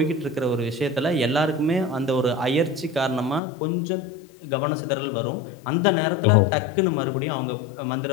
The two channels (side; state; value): right; drops out; at 3.4 s